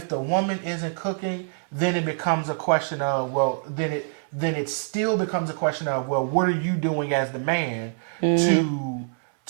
the woman isn't cooking, then it becomes a question of, then it still becomes a question of, well, what are you doing as the man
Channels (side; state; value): left; silent; 62 dB below the other